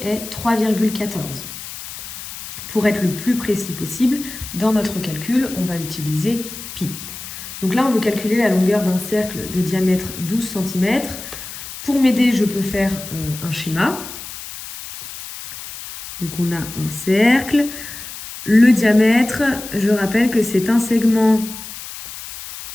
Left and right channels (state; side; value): noise; left; hiss, 11 dB below the sound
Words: est 3,14. Pour être le plus précis possible, dans notre calcul, on va utiliser pi. Donc là, on veut calculer la longueur d'un cercle de diamètre 12 cm. Pour m'aider, je peux faire un schéma. Donc on a un cercle. Le diamètre, je rappelle que c'est un segment